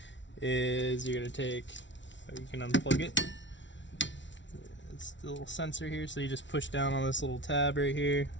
is you're gonna take, you can unplug it. It's the little sensor here, so you just push down on this little tab right here.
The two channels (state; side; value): late; right; 0.54 ms